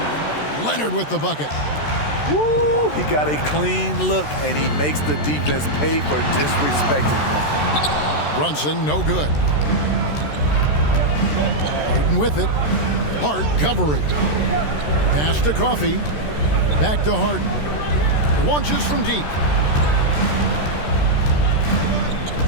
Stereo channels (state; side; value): late; right; 13 ms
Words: Leonard with the bucket. Woo! He got a clean look, and he makes the defense pay for disrespecting him. Brunson, no good. Harden with it. Hart covering. Pass to Coffee. Back to Harden. Launches from deep.